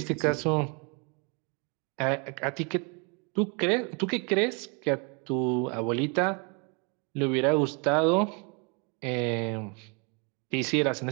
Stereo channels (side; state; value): left; quieter; 33.7 dB